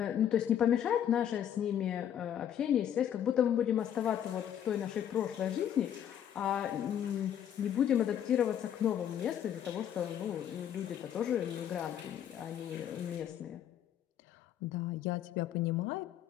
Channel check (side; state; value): right; quieter; 9.8 dB